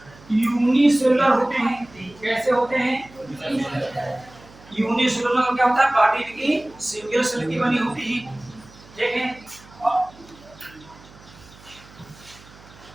यूनिसेलुलर होते हैं। कैसे होते हैं? यूनिसेलुलर का क्या होता है? बॉडी की सिंगल सेल की बनी होती है, ठीक है।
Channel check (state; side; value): noise; right; hum, 23 dB below the sound